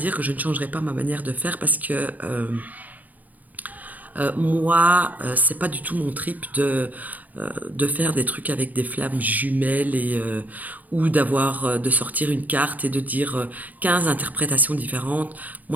que je ne changerai pas ma manière de faire parce que moi, c'est pas du tout mon trip de faire des trucs avec des flammes jumelles ou de sortir une carte et de dire 15 interprétations différentes.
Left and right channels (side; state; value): left; late; 0.080 ms